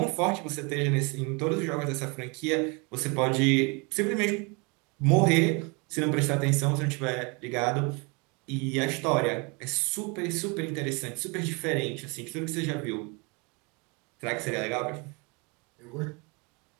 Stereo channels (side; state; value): left; quieter; 30.3 dB